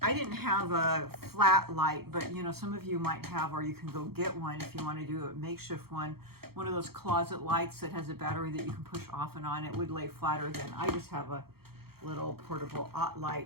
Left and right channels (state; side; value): late; left; 0.95 ms